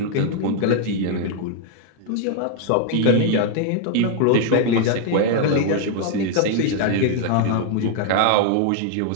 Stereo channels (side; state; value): both; different; correlation 0.00